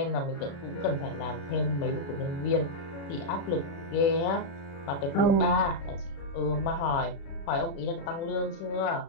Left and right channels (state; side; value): late; right; 35 ms